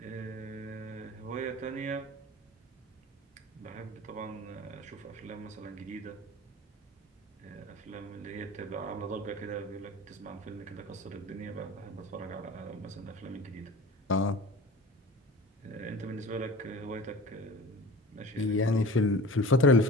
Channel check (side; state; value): both; normal; correlation 0.39